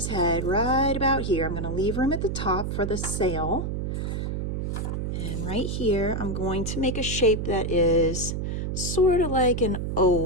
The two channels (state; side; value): noise; right; hum, 2 dB below the sound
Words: head right about here. I'm going to leave room at the top for the sail. And right here, I'm going to make a shape that is sort of like an